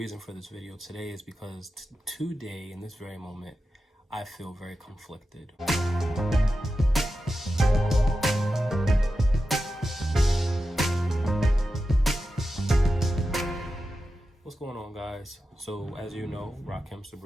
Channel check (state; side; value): normal; both; correlation 0.91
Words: for this video today is because today, in this very moment, I feel very conflicted. What's going on, guys? So as you know, Rahkim